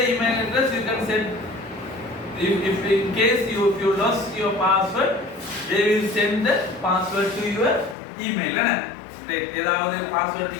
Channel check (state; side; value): drops out; right; at 8.0 s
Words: email address you can set if in case if you lost your password they will send the password to your email right ஏதாவது password